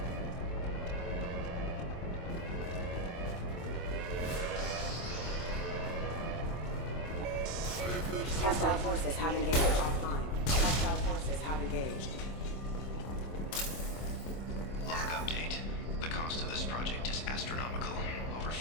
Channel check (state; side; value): late; right; 25 ms